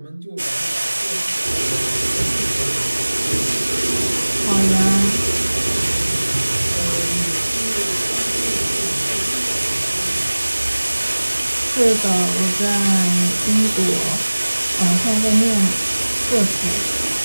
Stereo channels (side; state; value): both; inverted; correlation -1.00